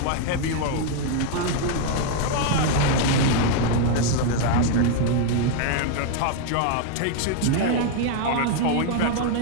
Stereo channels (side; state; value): both; different; correlation 0.00